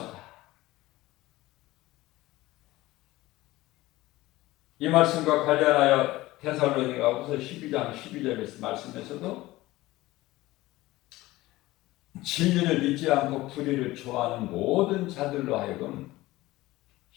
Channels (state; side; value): quieter; right; 18.2 dB